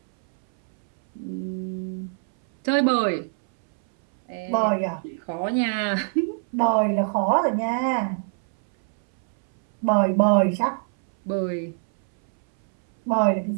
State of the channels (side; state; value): left; silent; 60 dB below the other